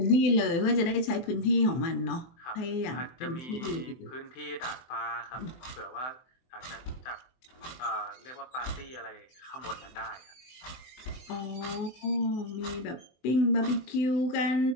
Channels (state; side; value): late; right; 23 ms